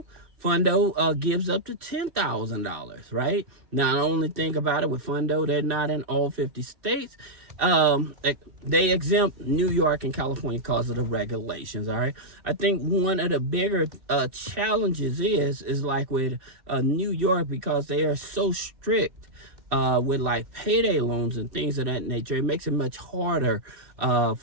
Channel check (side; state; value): left; late; 2.6 ms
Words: Fundo gives up to $10,000, right? Now, the only thing about it with Fundo, they're not in all 50 states. They exempt New York and California because of the regulations, all right? I think one of the bigger challenges is like with New York, because they are so strict with like payday loans and things of that nature. It makes it much harder